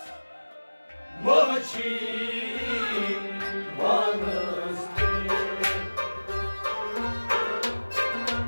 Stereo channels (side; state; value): both; inverted; correlation -1.00